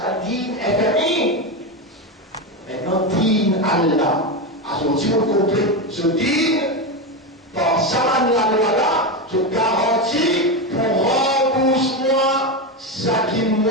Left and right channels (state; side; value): normal; both; correlation 0.14